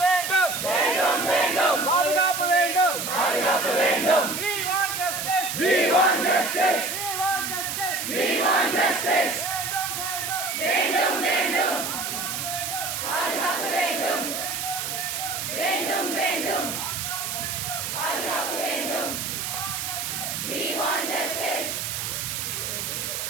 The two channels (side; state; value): right; noise; hiss, 3 dB below the sound